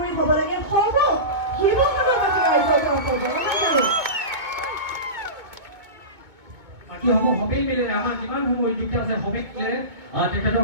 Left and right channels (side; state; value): left; late; 2.2 ms